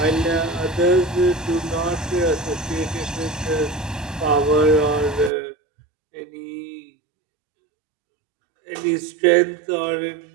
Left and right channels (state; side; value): drops out; left; at 5.3 s